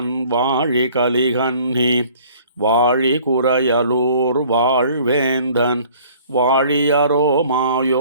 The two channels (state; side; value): inverted; both; correlation -0.53